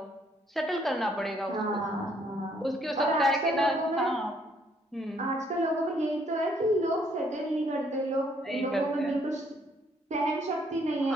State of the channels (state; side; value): normal; both; correlation 0.67